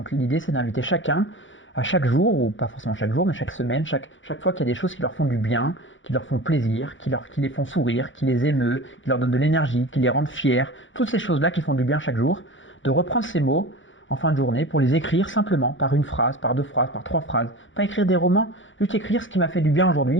l'idée, c'est d'inviter chacun à chaque jour, ou pas forcément chaque jour, mais chaque semaine, chaque fois qu'il y a des choses qui leur font du bien, qui leur font plaisir, qui les font sourire, qui les émeut, qui leur donnent de l'énergie, qui les rendent fiers. Toutes ces choses-là qui font du bien chaque jour. De reprendre ces mots en fin de journée pour les écrire simplement par une phrase, par 2 phrases, par 3 phrases. Pas écrire des romans, juste écrire ce qui m'a fait du bien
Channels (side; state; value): right; late; 0.56 ms